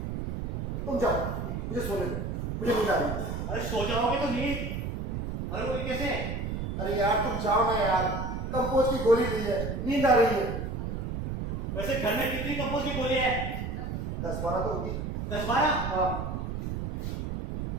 तुम जाओ, मुझे सोने दो, मुझे नींद आ रही है। अरे सो जाओगे तो नींद मरोगे कैसे? अरे यार तुम जाओ ना यार, कंपोज की गोली ली है, नींद आ रही है। वैसे घर में कितनी कंपोज की गोली है? 10-12 तो होगी। 10-12? हाँ।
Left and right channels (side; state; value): right; noise; rumble, 3 dB below the sound